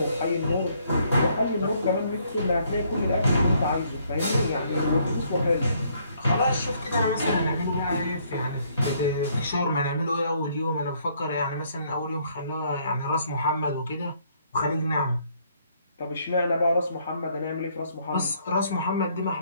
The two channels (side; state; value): both; inverted; correlation -0.67